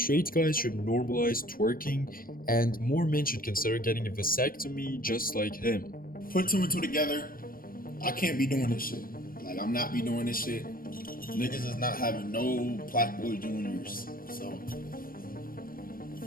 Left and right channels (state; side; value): late; right; 0.42 ms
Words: guys should normalize twerking and more men should consider getting a vasectomy just like him. Put two and two together. I can't be doing this shit. Like, I'm not be doing this shit. Niggas is not having no PlaqueBoy Juniors. So,